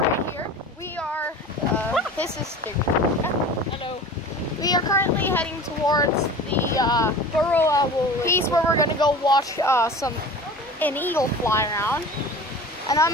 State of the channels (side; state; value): both; normal; correlation 0.38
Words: here. We are this is Hello. we are currently heading towards the Burrow Owl piece where we're gonna go watch an eagle fly around. And I'm